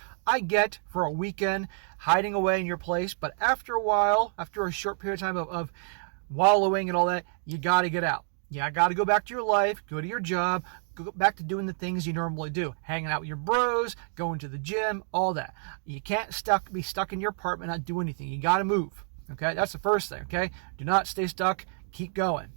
I get for a weekend hiding away in your place, but after a while, after a short period of time of wallowing and all that, you got to get out. Yeah, I got to go back to your life, go to your job, go back to doing the things you normally do. Hanging out with your bros, going to the gym, all that. You can't be stuck in your apartment, not do anything. You got to move. Okay, that's the first thing, okay? Do not stay stuck. Keep going.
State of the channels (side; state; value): left; silent; 59 dB below the other